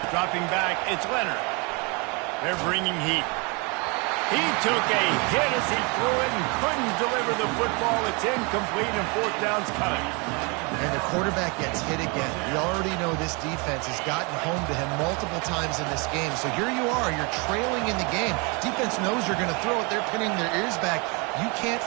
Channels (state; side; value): quieter; left; 30.5 dB